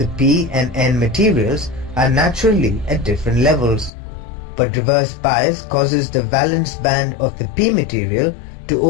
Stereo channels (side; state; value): right; drops out; at 3.9 s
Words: p and n materials are naturally at different levels, but reverse bias causes the valence band of the p material to